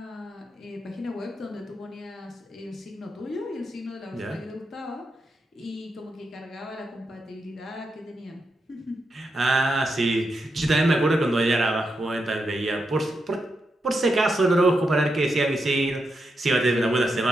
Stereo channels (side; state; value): both; normal; correlation 0.85